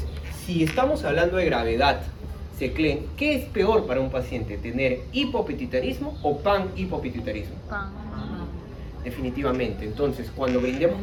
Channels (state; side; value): identical; both; correlation 1.00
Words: si estamos hablando de gravedad, Seclen, ¿qué es peor para un paciente? ¿Tener hipopituitarismo o panhipopituitarismo? Definitivamente. Entonces, cuando brindemos